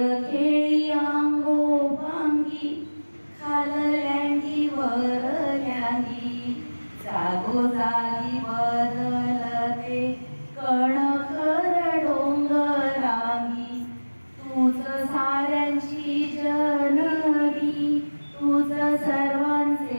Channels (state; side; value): inverted; both; correlation -1.00